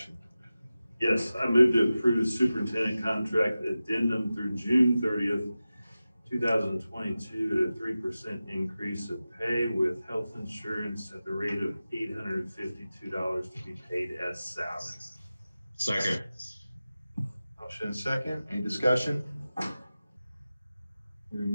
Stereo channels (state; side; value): inverted; both; correlation -0.95